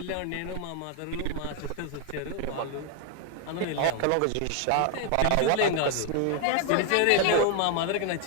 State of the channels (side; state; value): both; different; correlation 0.01